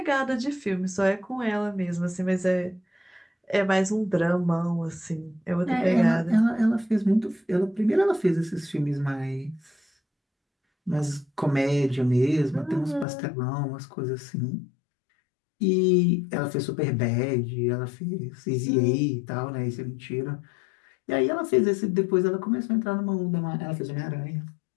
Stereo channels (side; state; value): right; drops out; at 13.1 s